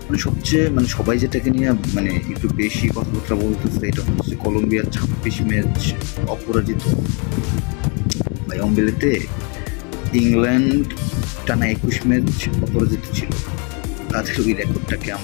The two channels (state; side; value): quieter; right; 34.7 dB